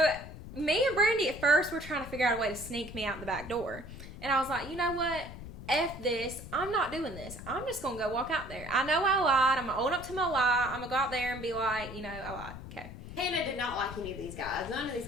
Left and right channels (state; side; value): noise; left; rumble, 12 dB below the sound